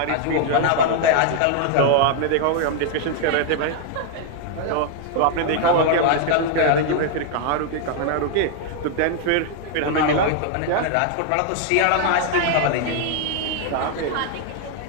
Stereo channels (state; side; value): different; both; correlation 0.00